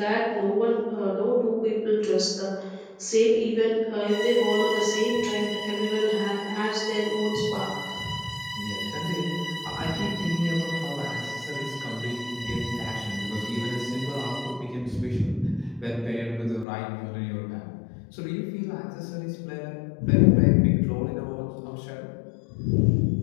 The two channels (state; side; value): drops out; right; at 16.7 s